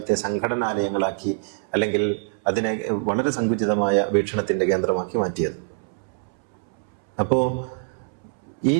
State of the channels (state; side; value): silent; left; 62 dB below the other